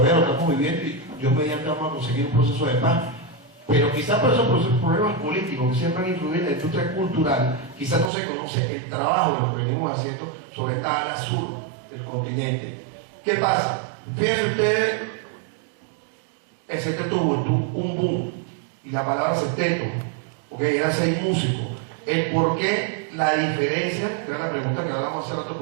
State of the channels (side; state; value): left; drops out; at 8.1 s